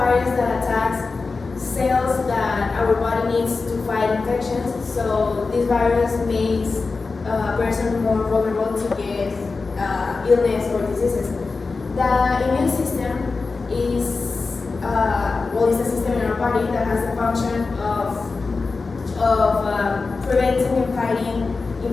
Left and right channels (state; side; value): quieter; right; 4.1 dB